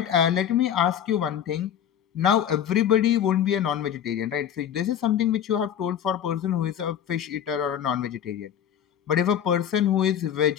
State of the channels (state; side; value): quieter; right; 9.4 dB